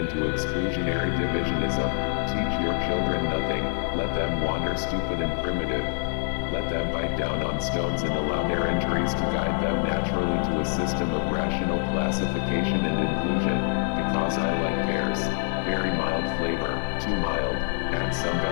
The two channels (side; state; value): right; silent; 58 dB below the other